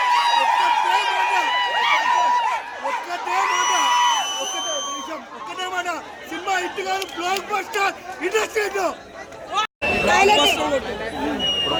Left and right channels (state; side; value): identical; both; correlation 1.00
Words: ఒక్కటే మాట, సినిమా హిట్ కాదు, బ్లాక్ బస్టర్ ఇండస్ట్రీ.